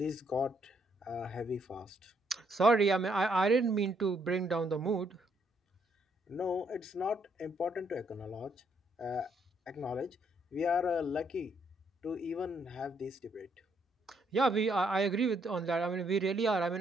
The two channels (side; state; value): both; normal; correlation 0.72